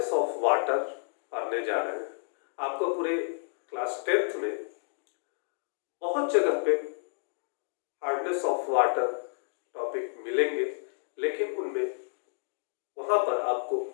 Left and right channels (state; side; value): silent; right; digital silence